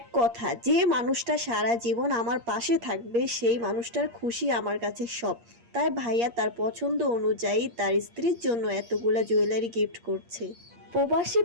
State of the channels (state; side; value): late; left; 8.5 ms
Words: কথা, যে মানুষটা সারা জীবন আমার পাশে থাকবে সেই মানুষটার খুশি আমার কাছে সব। তাই ভাইয়া তার পছন্দ অনুযায়ী তার স্ত্রীর জন্য এতগুলা জুয়েলারি গিফট করছে। প্রবাসী